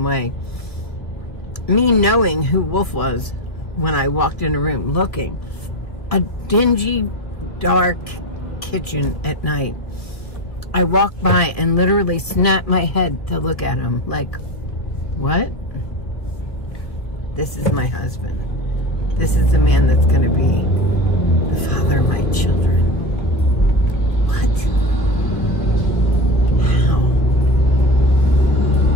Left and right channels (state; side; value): late; right; 1.5 ms